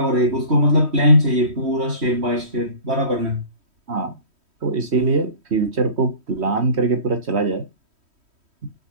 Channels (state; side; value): late; left; 3.1 ms